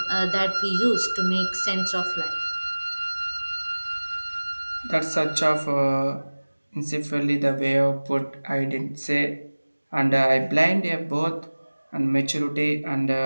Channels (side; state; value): both; inverted; correlation -1.00